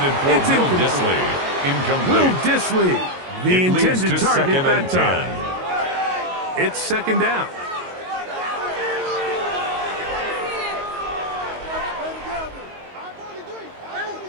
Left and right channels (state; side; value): late; left; 22 ms